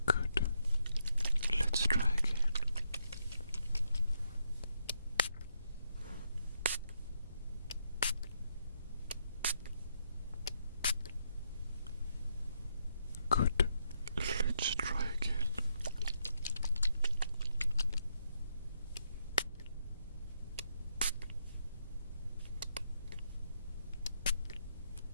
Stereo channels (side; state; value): both; inverted; correlation -0.78